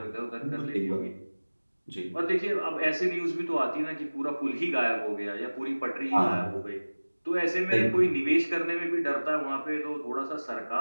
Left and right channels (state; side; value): inverted; both; correlation -1.00